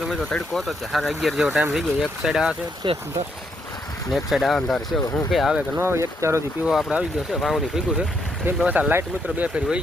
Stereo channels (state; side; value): normal; both; correlation 0.76